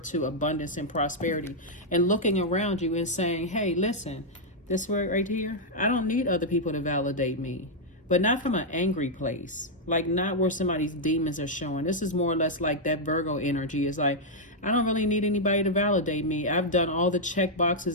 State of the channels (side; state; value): both; normal; correlation -0.04